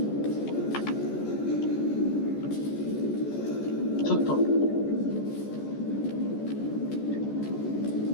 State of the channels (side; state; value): right; late; 14 ms